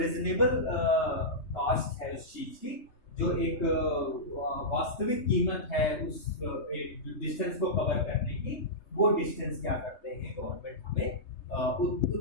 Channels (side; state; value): right; late; 3.3 ms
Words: कॉस्ट है उस चीज की, जो एक वास्तविक कीमत है उस डिस्टेंस को कवर करने की, वो डिस्टेंस क्या करते हैं, गवर्नमेंट हमें